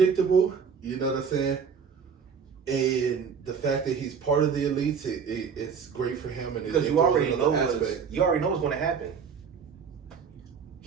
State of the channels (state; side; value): quieter; left; 6.4 dB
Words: you know what I'm saying? And the fact that he's part of the Elites, it's great for him. And because you already know what's going to happen.